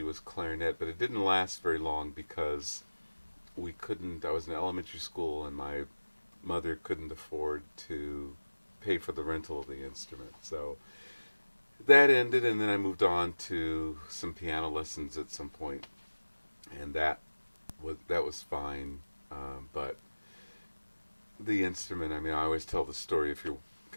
was clarinet, but it didn't last very long because we couldn't. I was in elementary school, and my mother couldn't afford to pay for the rental of the instrument. So that ended, and then I moved on to some piano lessons at some point, and that was fine. But the instrument, I mean, I always tell the story if you're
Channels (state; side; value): inverted; both; correlation -1.00